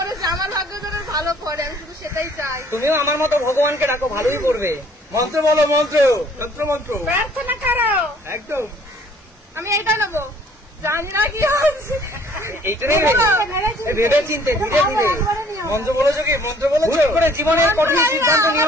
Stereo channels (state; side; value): normal; both; correlation 0.58